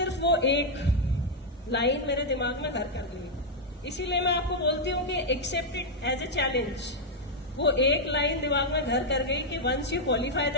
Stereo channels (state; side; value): normal; both; correlation -0.02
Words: वो एक लाइन मेरे दिमाग में घर कर गई. इसीलिए मैं आपको बोलती हूँ कि accept it as a challenge. वो एक लाइन दिमाग में घर कर गई कि once you qualify the